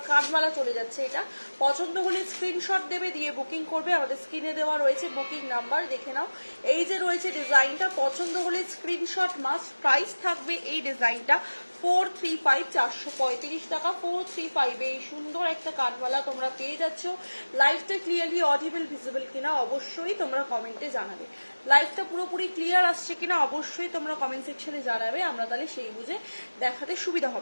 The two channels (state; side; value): inverted; both; correlation -1.00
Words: কানবালা চলে যাচ্ছে। এটা পছন্দ হলে স্ক্রিনশট দেবে, দিয়ে বুকিং করবে। আমাদের স্ক্রিনে দেওয়া রয়েছে বুকিং নাম্বার, দেখে নাও। এই যে রয়েছে ডিজাইনটা, পছন্দ হলে স্ক্রিনশট মাস্ট। প্রাইস থাকবে এই ডিজাইনটা 435, 435 টাকা। 435 এই সুন্দর একটা কানবালা তোমরা পেয়ে যাচ্ছ। লাইভটা ক্লিয়ারলি অডিবল ভিজিবল কিনা অবশ্যই তোমরা কমেন্টে জানাবে। লাইভটা পুরোপুরি ক্লিয়ার আসছে কিনা অবশ্যই তোমরা কমেন্ট সেকশনে জানাবে, আমরা তাহলে সেই বুঝে দেখাতে সুবিধা